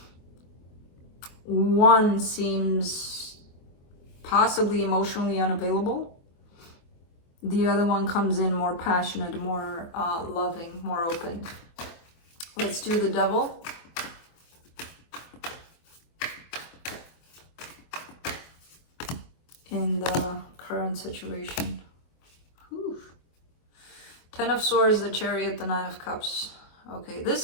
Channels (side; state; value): right; late; 24 ms